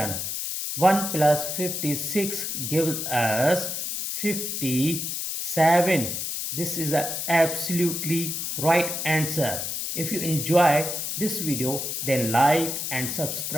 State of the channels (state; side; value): noise; left; hiss, 3 dB below the sound